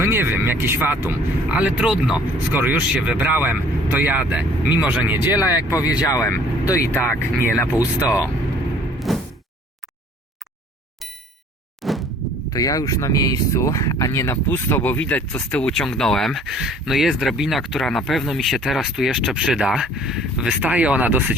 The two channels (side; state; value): both; normal; correlation 0.55